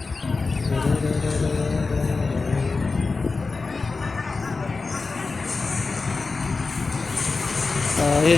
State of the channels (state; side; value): quieter; right; 4.1 dB